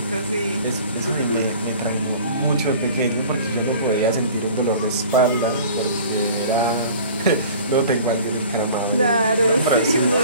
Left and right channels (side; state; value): both; inverted; correlation -0.45